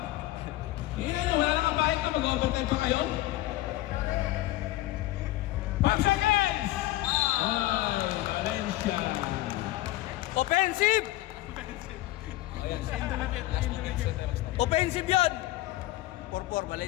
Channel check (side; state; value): right; quieter; 16.8 dB